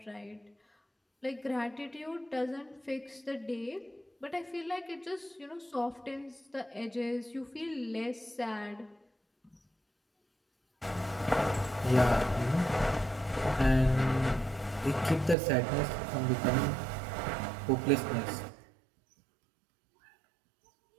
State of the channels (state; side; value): drops out; left; at 15.4 s